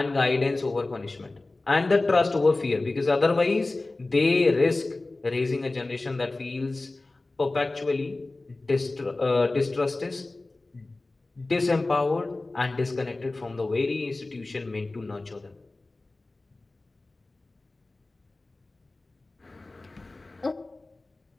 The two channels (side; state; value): right; quieter; 3.1 dB